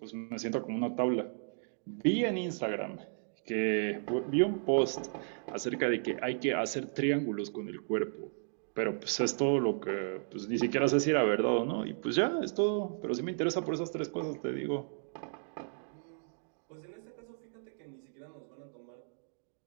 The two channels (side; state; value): left; silent; digital silence